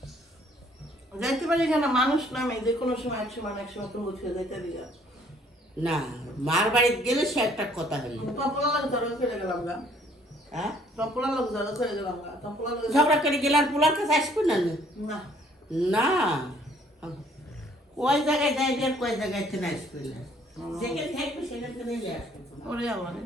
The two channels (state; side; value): normal; both; correlation 0.61